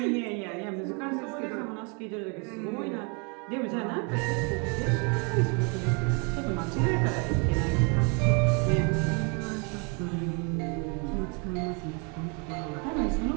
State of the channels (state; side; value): quieter; left; 34.2 dB